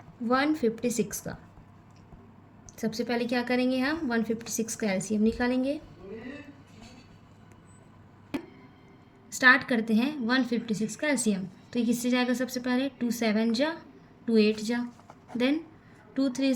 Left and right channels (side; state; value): both; identical; correlation 1.00